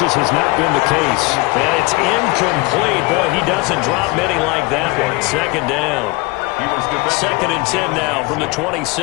has not been the case. And it's incomplete. Boy, he doesn't drop many like that one. Second down. Second and 10 now from the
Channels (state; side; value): quieter; right; 23.5 dB